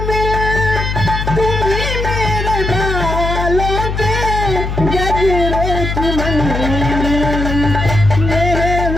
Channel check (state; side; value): noise; left; hum, 3 dB below the sound